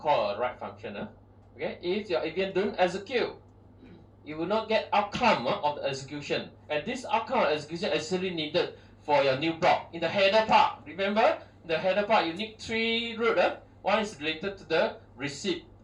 a write function. Okay. If your EVM don't execute, you will not get outcome of the execution, and this outcome of execution is actually needed for your new block in the header part. Remember, in the header part you need 3 root. One is related to the receipt.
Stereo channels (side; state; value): both; identical; correlation 1.00